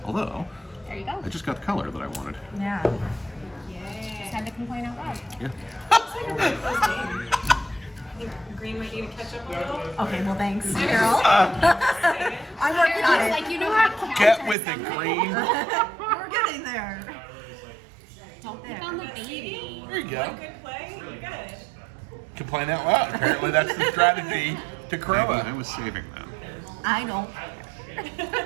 Although, There you go. I just got the color that I wanted. Yeah. Just had to complain out loud. Yeah. it's like a really close game. I think green might need to catch up a little. Okay, well, thanks, Carol. I'm working on it. Like, you know how to counter Get with it, something. Green. We're getting there. Don't pick on the baby. There you One go. good play, you're good. Complain out loud. Apparently, that's the strategy to Maybe I KROMA. was saving them. I don't.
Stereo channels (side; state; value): left; drops out; at 14.6 s